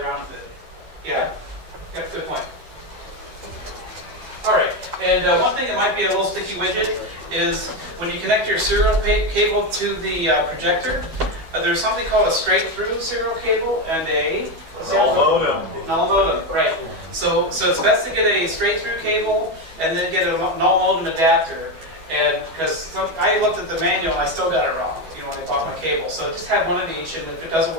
with it. Yeah, that's a good point. All right, and one thing that might be a little sticky widget is when you connect your serial cable to the projector, there's something called a straight-through serial cable and a Null modem. null modem, right. So it's best to get a straight-through cable and then get a null modem adapter. And because I looked at the manual, I still got it wrong, you know, when I bought my cable. So just have one of each, and if it doesn't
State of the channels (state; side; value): late; left; 12 ms